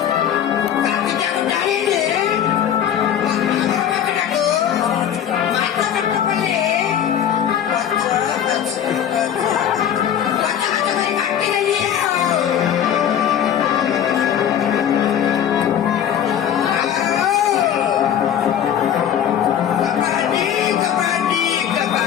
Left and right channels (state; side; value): quieter; right; 9.5 dB